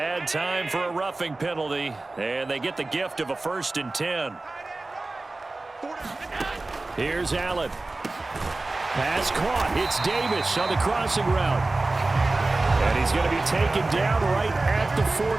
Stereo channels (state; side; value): quieter; left; 3.1 dB